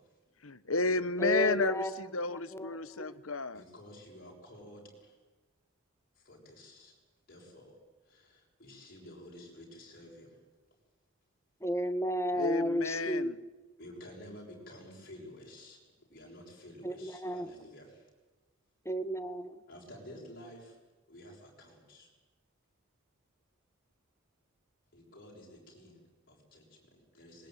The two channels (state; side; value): normal; both; correlation 0.19